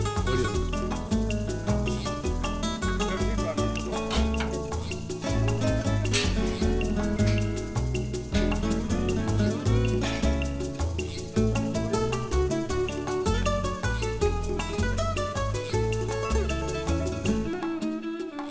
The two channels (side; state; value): both; identical; correlation 1.00